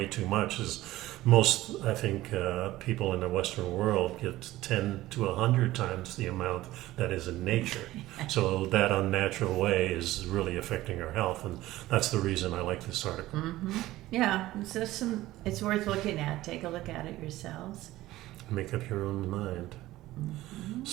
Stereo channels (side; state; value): left; quieter; 16.5 dB